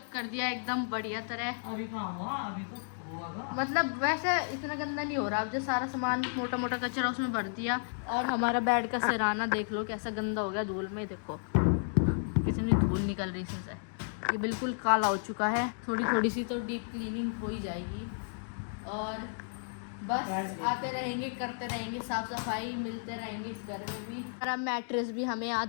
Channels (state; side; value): silent; right; digital silence